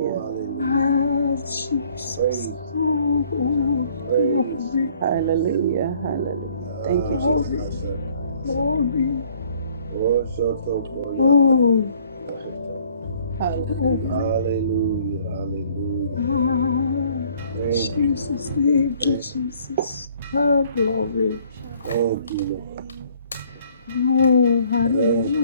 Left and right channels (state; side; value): inverted; both; correlation -0.60